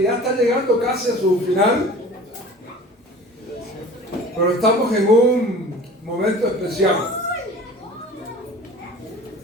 ya está llegando casi a su final. Pero estamos en un momento especial.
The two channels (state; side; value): normal; both; correlation 0.42